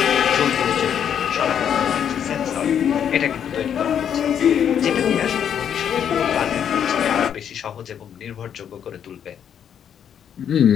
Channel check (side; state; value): right; quieter; 8.7 dB